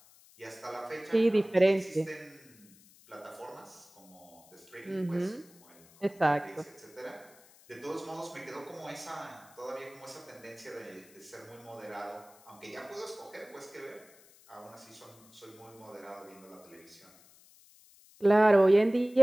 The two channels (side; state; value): left; noise; hiss, 25 dB below the sound